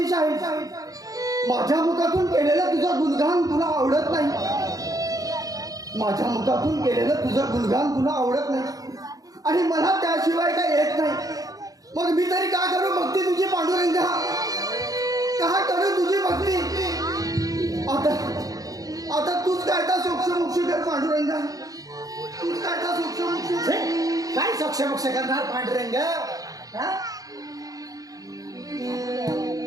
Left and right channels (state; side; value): late; left; 0.17 ms